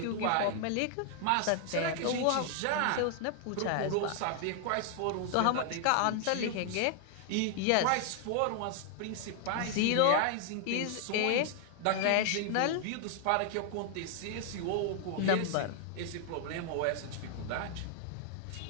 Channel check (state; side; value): different; both; correlation 0.00